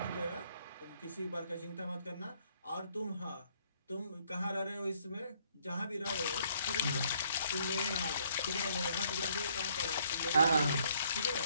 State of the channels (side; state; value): both; inverted; correlation -0.67